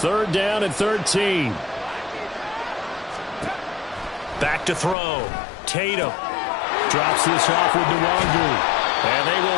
down and 13. Back to throw. Tatum drops this off with Nwangu. And they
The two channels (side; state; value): right; drops out; at 5.0 s